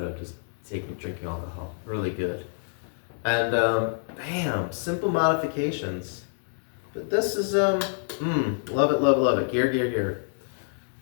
of just drinking alcohol. Really good. And bam, simple modifications. But this is love it. Gear.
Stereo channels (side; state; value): right; silent; digital silence